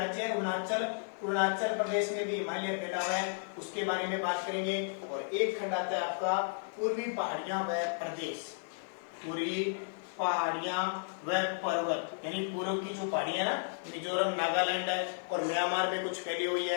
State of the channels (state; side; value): silent; right; digital silence